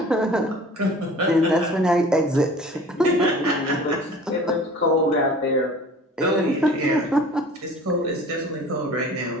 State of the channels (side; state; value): both; normal; correlation 0.45